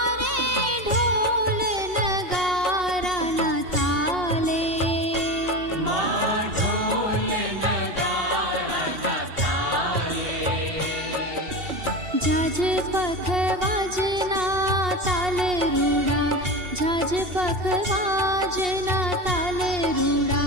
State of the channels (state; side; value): late; left; 2.7 ms